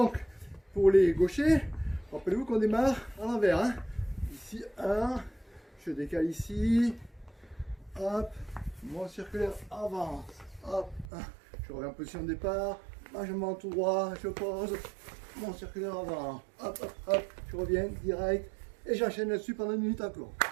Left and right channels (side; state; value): left; drops out; at 11.1 s